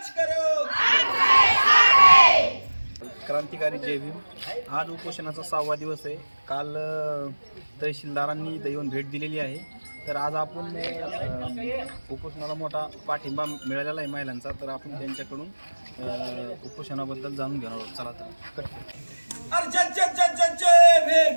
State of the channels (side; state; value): both; inverted; correlation -1.00